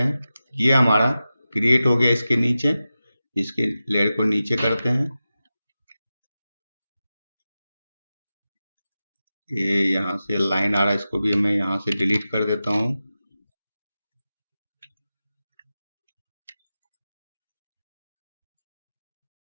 ये हमारा क्रिएट हो गया इसके नीचे। इसके लेयर को नीचे करते हैं, ये यहाँ से लाइन आ रहा है, इसको भी मैं यहाँ से डिलीट कर देता हूँ।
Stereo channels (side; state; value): both; inverted; correlation -0.93